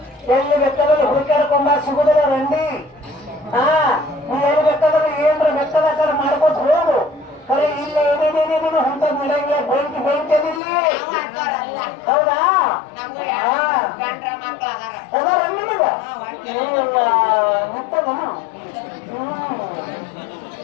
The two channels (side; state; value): right; drops out; at 10.6 s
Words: ಎಲ್ಲಿ ಬೇಕಾದ್ರೆ ಹುಡುಕಾಡ್ಕೊಂಬ ಸಿಗುದಿಲ್ಲ ರಂಡಿ ನೀ ಎಲ್ಲಿ ಬೇಕಾದ್ರೆ ಏನ್ರ ಬೇಕಾದ ಮಾಡ್ಕೊತ ಹೋಗು ಕರೆ ಇಲ್ಲ ಏನೇನೇನೇನು ಅಂತ ನಡೆಯಂಗಿಲ್ಲ ಬೆಂಕಿ ಇಲ್ಲಿ ಹೌದಾ ನಿಂತದನು